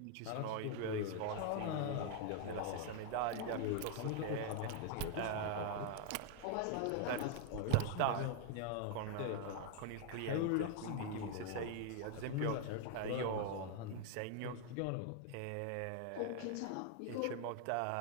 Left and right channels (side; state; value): both; different; correlation 0.00